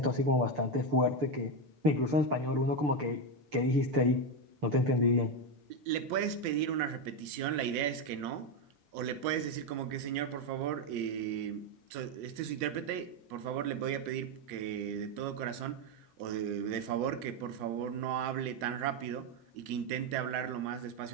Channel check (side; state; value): left; late; 6.9 ms